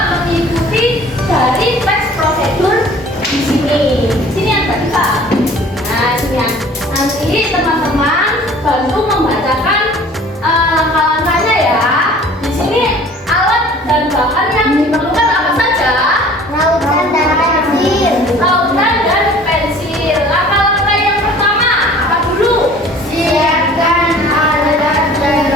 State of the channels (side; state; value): both; normal; correlation 0.49